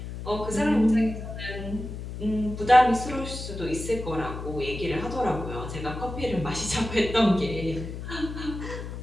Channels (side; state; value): left; noise; hum, 8 dB below the sound